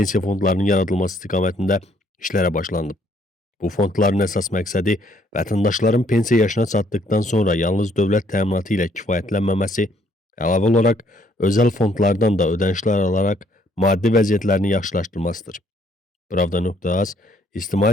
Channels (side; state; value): both; normal; correlation 0.66